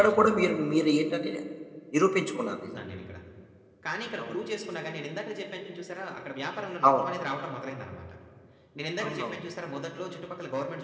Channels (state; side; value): identical; both; correlation 1.00